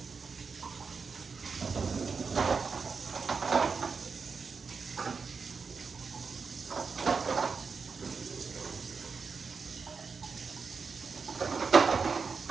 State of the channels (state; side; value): quieter; left; 5.1 dB